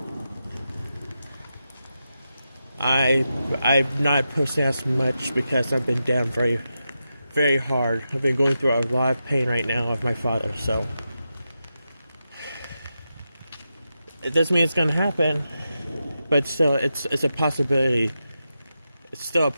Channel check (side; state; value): both; inverted; correlation -0.88